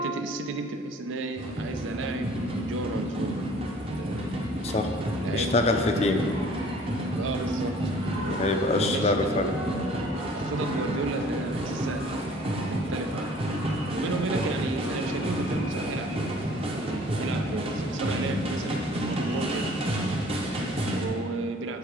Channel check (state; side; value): normal; both; correlation 0.52